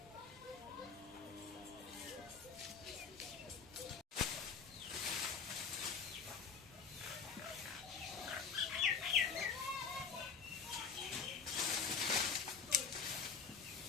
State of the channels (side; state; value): right; quieter; 6.0 dB